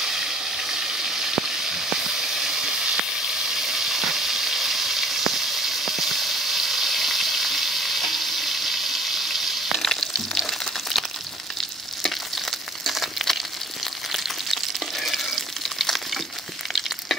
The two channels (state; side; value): normal; both; correlation 0.55